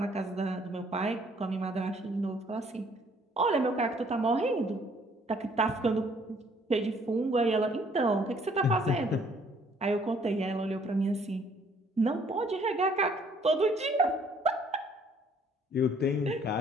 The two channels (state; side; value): normal; both; correlation 0.62